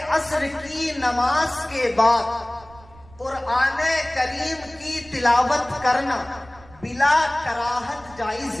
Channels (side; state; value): right; noise; rumble, 24 dB below the sound